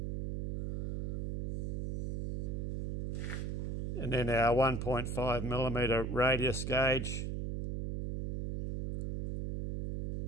And then our 1.5mm radius gauge.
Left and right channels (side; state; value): right; noise; hum, 1 dB below the sound